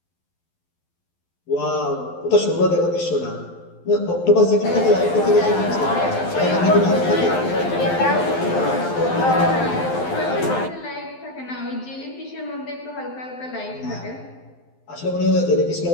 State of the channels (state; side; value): late; right; 12 ms